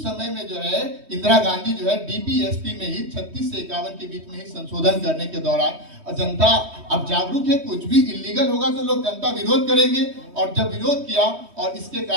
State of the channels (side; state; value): left; late; 3.2 ms